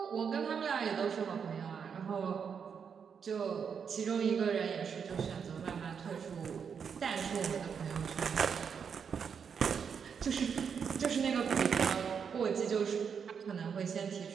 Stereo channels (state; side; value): quieter; left; 6.8 dB